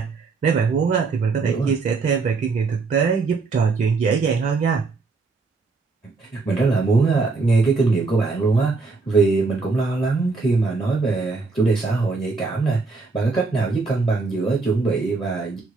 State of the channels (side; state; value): left; quieter; 4.1 dB